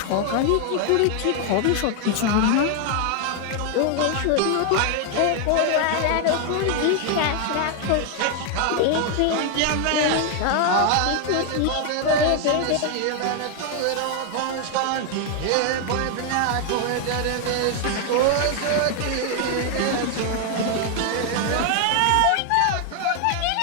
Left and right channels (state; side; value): different; both; correlation 0.00